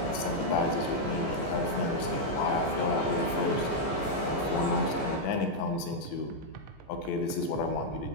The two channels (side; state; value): right; late; 14 ms